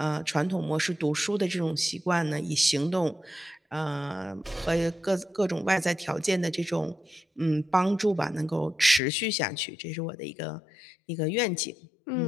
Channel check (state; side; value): drops out; right; at 9.0 s